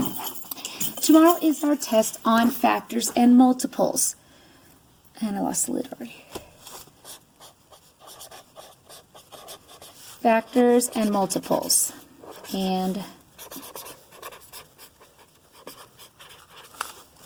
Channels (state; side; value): identical; both; correlation 1.00